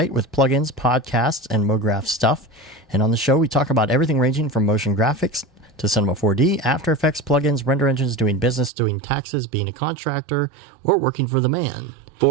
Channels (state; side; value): drops out; left; at 8.7 s